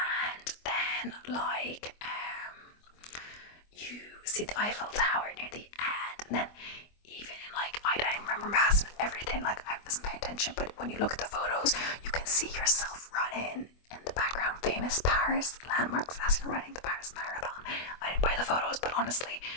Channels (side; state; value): right; late; 24 ms